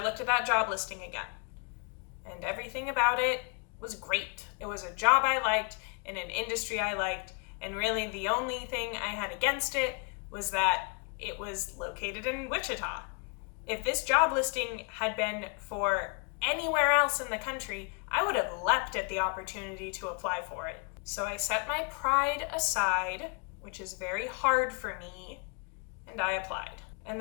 looked at that job listing again, and everything about it was great. It was a job I liked in an industry I liked, and really the only thing I had against it was that it was located in Wichita. If this job listing had been for anywhere else in the country, I would have leapt at the opportunity to apply for it. So I set my pride aside, which is very hard for me, and I applied. And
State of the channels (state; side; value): quieter; right; 33.8 dB